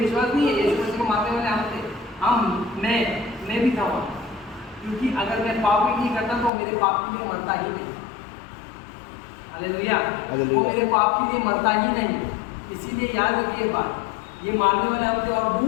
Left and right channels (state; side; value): drops out; right; at 6.5 s